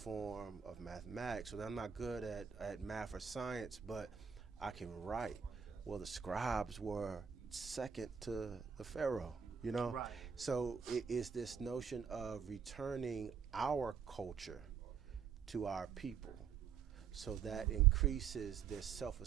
of mathematics. So I'm not good at math or science, but I can write. Well, the scribes were second to the pharaoh, Right. So it is this notion of returning our culture to our people, so that increases their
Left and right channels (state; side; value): quieter; left; 7.1 dB